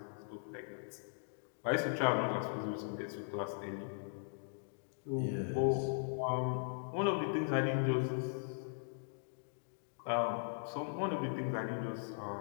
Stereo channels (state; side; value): silent; right; digital silence